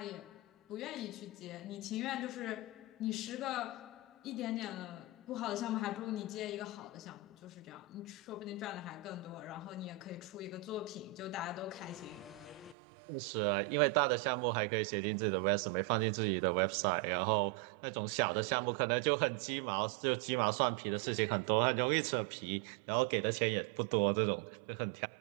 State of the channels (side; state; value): left; drops out; at 12.8 s